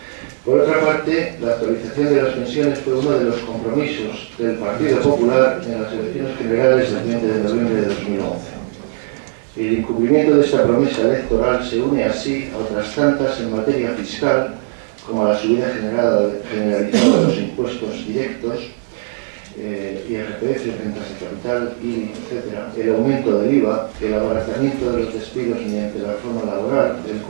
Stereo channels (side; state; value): left; silent; 57 dB below the other